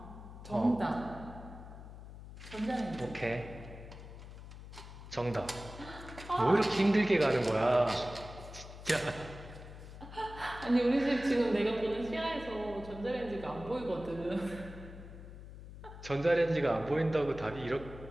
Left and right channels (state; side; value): noise; left; hum, 14 dB below the sound